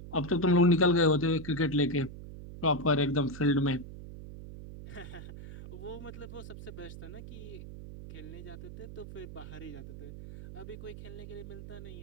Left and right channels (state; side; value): noise; right; hum, 12 dB below the sound